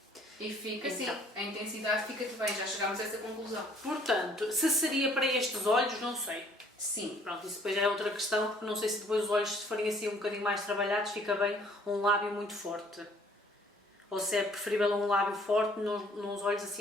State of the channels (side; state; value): both; normal; correlation 0.58